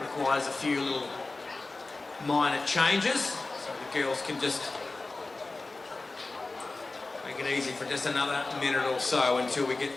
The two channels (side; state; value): right; quieter; 3.4 dB